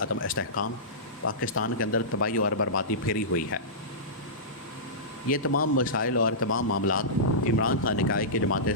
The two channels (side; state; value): both; normal; correlation -0.18